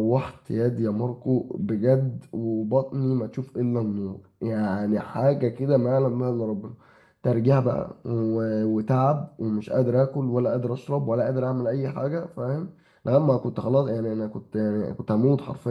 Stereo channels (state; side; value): identical; both; correlation 1.00